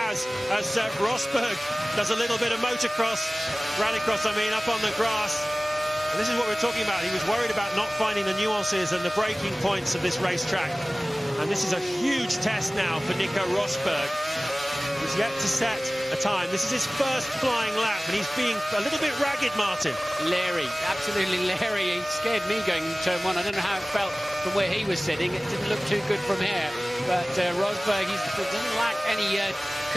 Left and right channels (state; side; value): normal; both; correlation 0.98